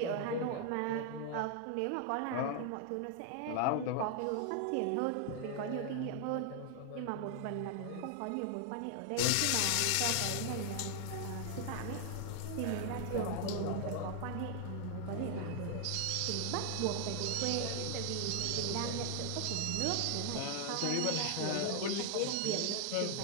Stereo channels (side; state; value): both; different; correlation 0.00